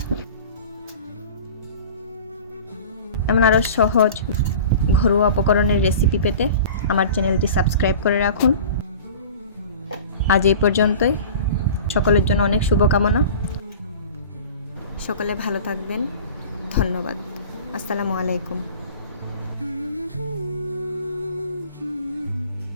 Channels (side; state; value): both; inverted; correlation -0.39